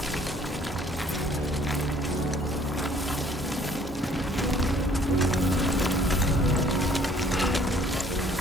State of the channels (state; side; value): normal; both; correlation 0.59